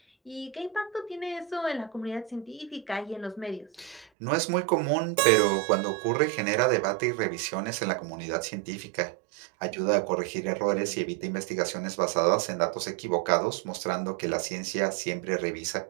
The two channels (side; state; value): left; drops out; at 4.0 s